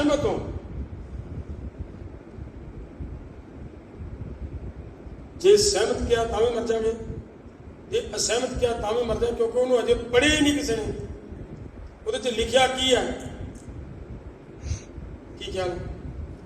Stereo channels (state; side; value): identical; both; correlation 1.00